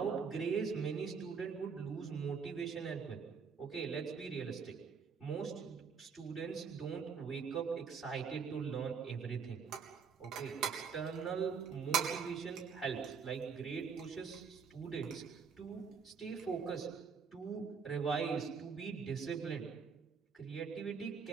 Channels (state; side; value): quieter; left; 5.9 dB